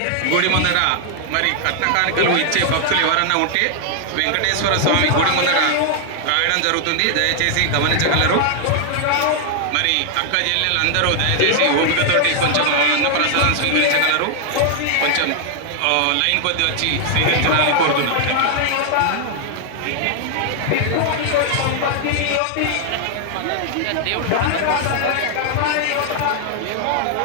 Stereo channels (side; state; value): both; different; correlation 0.00